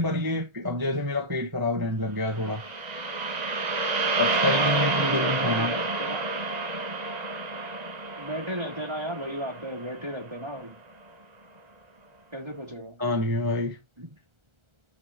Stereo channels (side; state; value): left; late; 1.3 ms